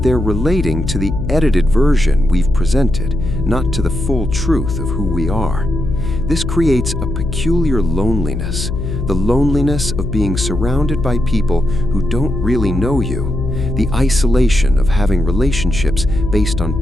they're relating to the edited version we've presented, not to the full truth of who we are. This creates a peculiar loneliness, the loneliness of being surrounded by people who don't really know you, the isolation of having relationships based on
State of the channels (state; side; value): noise; left; hum, 4 dB below the sound